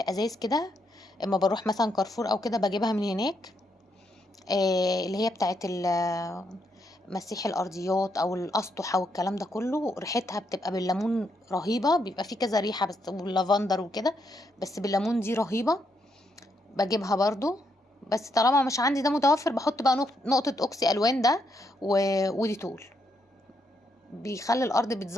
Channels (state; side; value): normal; both; correlation 0.78